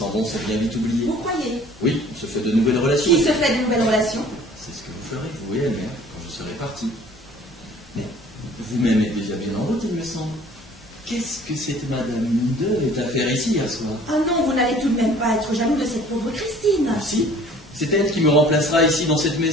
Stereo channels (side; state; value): both; normal; correlation 0.51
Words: vont sont bien vite oubliés. Vous croyez? Oui, on se fait de nouvelles relations. Qui se fait de nouvelles relations? C'est ce que vous ferez, vous et elle, mère, quand je serai parti. Mais vous-même êtes déjà bien en route, il me semble. Qu'est-ce que cette Madame Munde est à faire ici, à soir? Ah non, vous n'allez tout de même pas être jaloux de cette pauvre Christine. Si, c'est elle qui me remplacera ici, dans cette